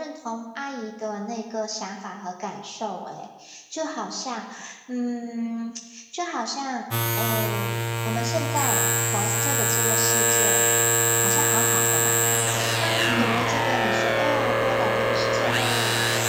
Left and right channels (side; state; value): both; identical; correlation 1.00